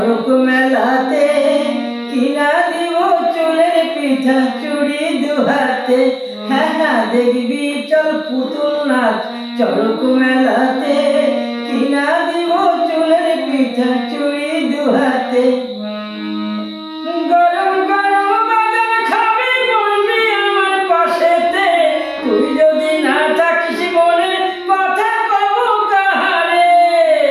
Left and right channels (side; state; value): both; identical; correlation 1.00